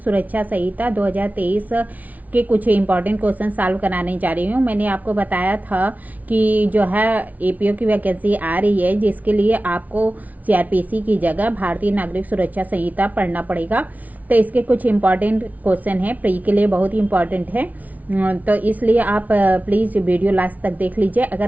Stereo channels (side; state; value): left; late; 0.074 ms